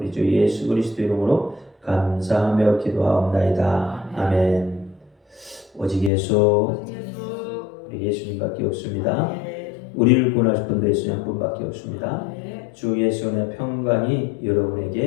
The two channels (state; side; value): drops out; right; at 6.1 s